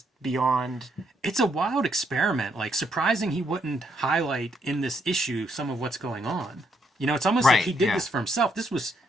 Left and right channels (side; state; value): both; normal; correlation 0.74